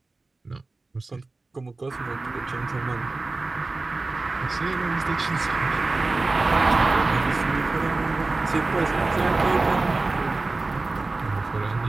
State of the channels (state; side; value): quieter; left; 3.4 dB